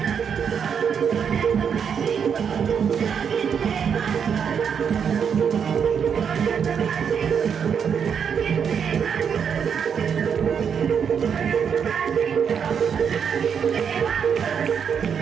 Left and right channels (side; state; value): left; quieter; 7.2 dB